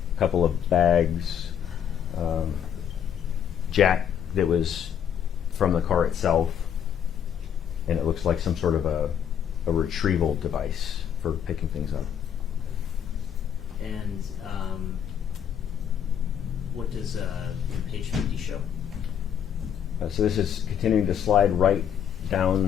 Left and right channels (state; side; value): quieter; right; 8.9 dB